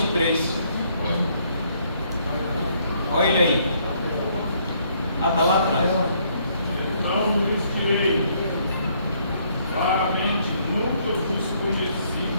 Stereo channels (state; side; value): inverted; both; correlation -0.68